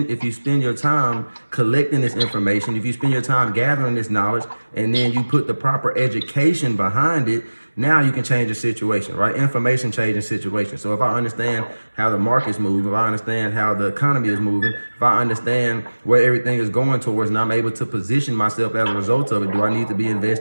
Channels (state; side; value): inverted; both; correlation -1.00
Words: your time collecting this information, if you spend your time gathering this knowledge, and then you put the proper education behind it, now you can change the situation, right? Information changes situations. So if I understand how the markets move, if I understand how the economy is moving, if I understand where everything is going towards, and I'm able to position myself as a result of it, do I need to be